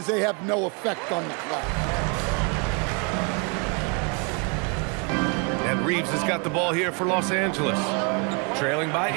they have no effect on the clock. And Reeves has got the ball here for Los Angeles. Trailing by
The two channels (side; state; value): left; quieter; 35.0 dB